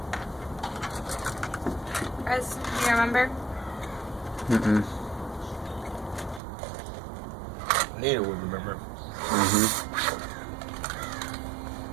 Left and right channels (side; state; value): left; drops out; at 6.4 s